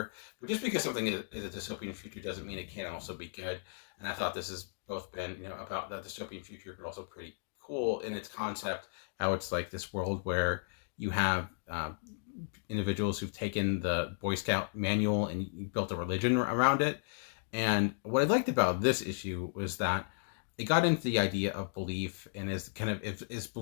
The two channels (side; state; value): right; silent; digital silence